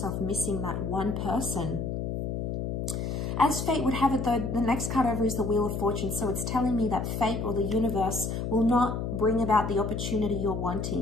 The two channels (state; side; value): noise; left; hum, 2 dB below the sound